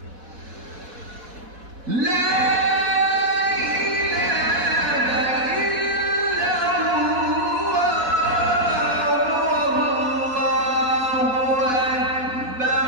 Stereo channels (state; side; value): late; left; 4.1 ms